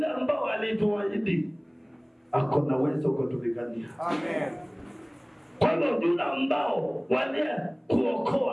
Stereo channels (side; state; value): both; identical; correlation 1.00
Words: ambao alituahidi ako na uwezo kutupigania. Amen. Kwa hivyo yule ambao walie